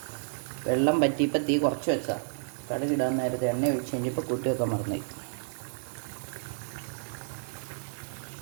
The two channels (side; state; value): left; silent; digital silence